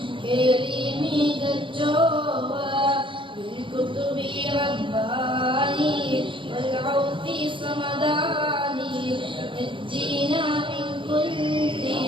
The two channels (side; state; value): left; late; 0.24 ms